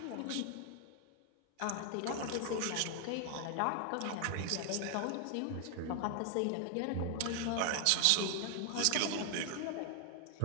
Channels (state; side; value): different; both; correlation 0.00